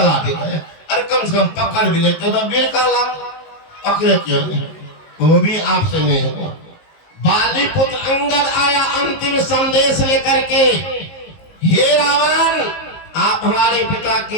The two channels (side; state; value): right; late; 19 ms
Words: गया। अरे कम से कम पकड़ भी लेते तो वीर कहला, पकड़े क्यों नहीं, वो भी आपसे नहीं हुआ। बाली पुत्र अंगद आया अंतिम संदेश लेकर के, हे रावण आप हमारे पिता